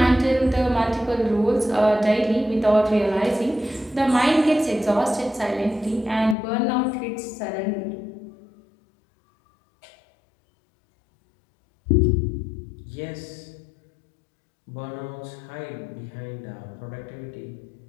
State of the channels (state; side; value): drops out; right; at 6.4 s